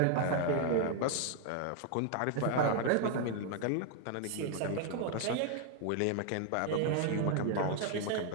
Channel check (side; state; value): both; different; correlation 0.00